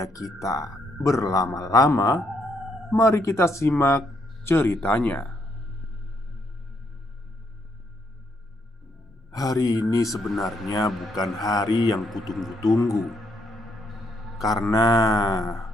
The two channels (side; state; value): both; normal; correlation 0.75